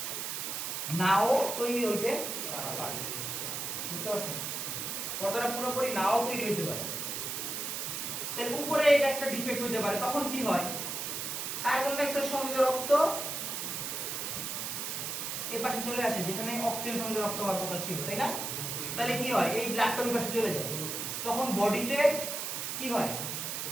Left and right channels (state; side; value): noise; right; hiss, 3 dB below the sound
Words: নাও তৈরি হইতে পারে। বুঝতে পারছেন? পর্দাটা পুরোপুরি নাও তৈরি হইতে পারে, তাহলে উপরে এটা একটা ডিফেক্ট হতে পারে। তখন কি হয়, কার্বন ডাই অক্সাইড সমৃদ্ধ রক্ত এই পাশে চলে আসে যেখানে অক্সিজেন সমৃদ্ধ রক্ত হওয়ার কথা ছিল, তাই না? তাহলে কি হয়, এই ব্লাডটা ওই পাশে চলে যায়, তখন বডিতে কি হয়,